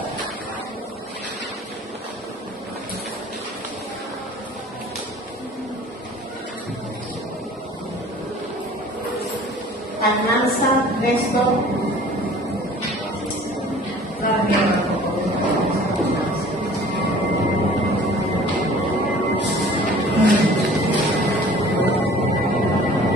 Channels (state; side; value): normal; both; correlation 0.48